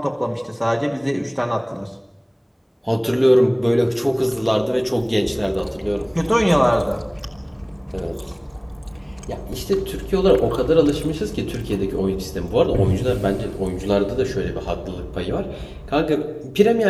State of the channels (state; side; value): identical; both; correlation 1.00